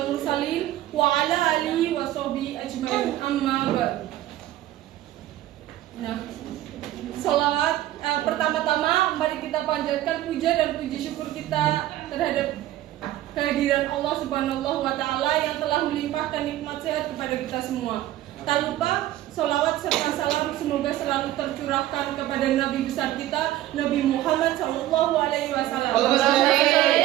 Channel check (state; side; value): quieter; left; 14.3 dB